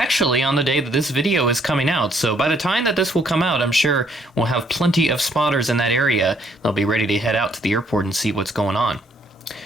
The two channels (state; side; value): normal; both; correlation 0.67